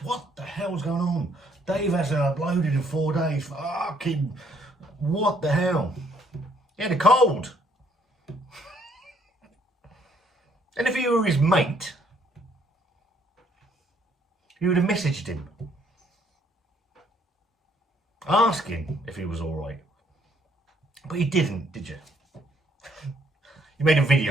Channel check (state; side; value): normal; both; correlation 0.66